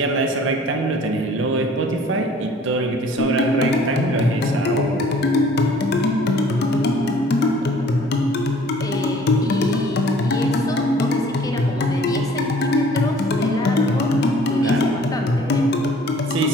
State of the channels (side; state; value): both; normal; correlation 0.53